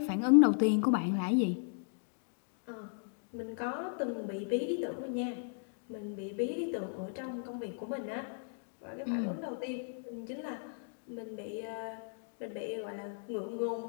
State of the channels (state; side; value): silent; right; digital silence